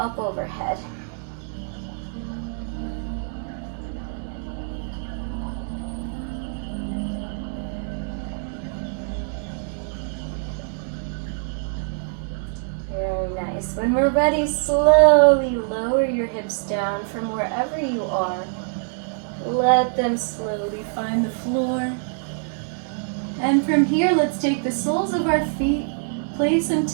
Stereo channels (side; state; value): left; silent; digital silence